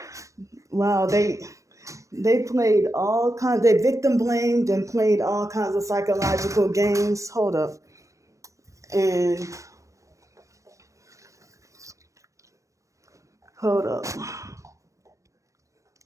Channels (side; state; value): left; late; 0.15 ms